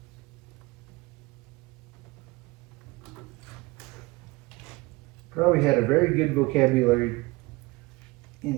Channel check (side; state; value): left; quieter; 22.7 dB